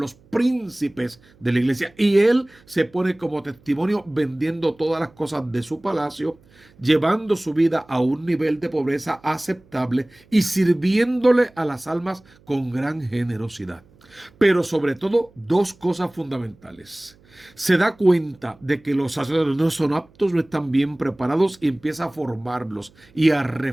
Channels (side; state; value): right; noise; hum, 29 dB below the sound